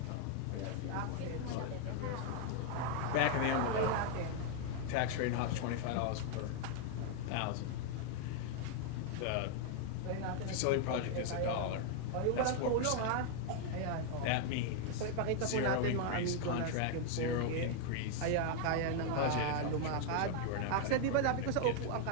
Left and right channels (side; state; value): both; different; correlation 0.00